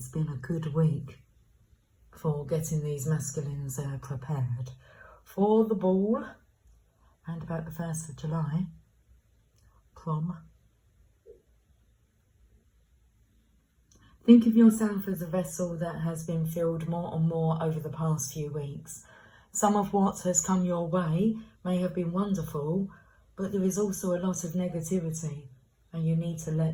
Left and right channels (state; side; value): identical; both; correlation 1.00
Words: been a good week for getting these masculines prepared for the ball and about the 1st of July, prom. Think of yourself as a vessel that has been filled more and more over the past few weeks. Some of what has come your way may have been wonderful, but there is also a lot of negativity and you need to